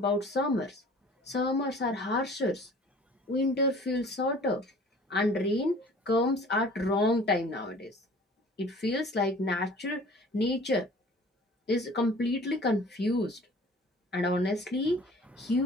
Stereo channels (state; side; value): normal; both; correlation 0.48